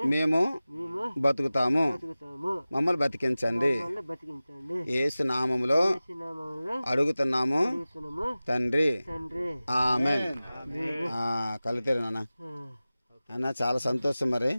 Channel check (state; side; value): inverted; both; correlation -0.97